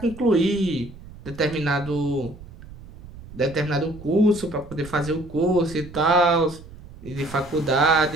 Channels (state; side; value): noise; right; rumble, 17 dB below the sound